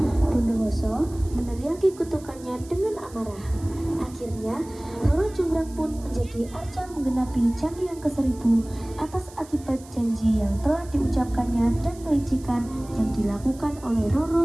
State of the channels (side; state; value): right; noise; hiss, 22 dB below the sound